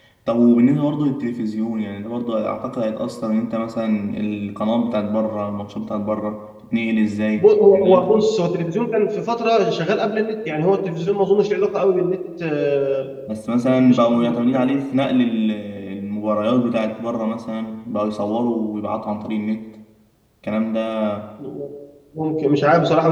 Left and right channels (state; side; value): identical; both; correlation 1.00